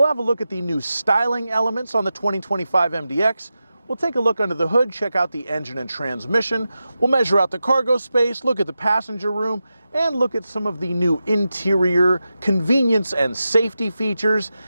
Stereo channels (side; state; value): both; inverted; correlation -0.91